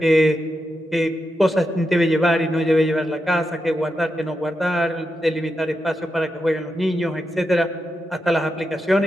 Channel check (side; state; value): both; normal; correlation 0.86